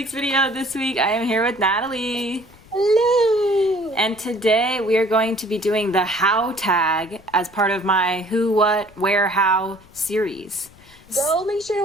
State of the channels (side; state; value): left; noise; rumble, 26 dB below the sound